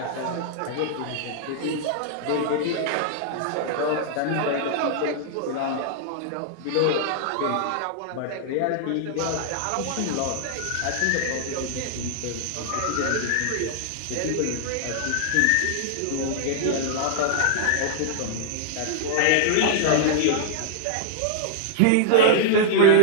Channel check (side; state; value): both; different; correlation -0.01